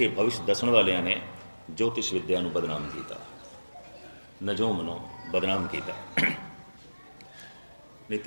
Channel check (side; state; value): both; inverted; correlation -1.00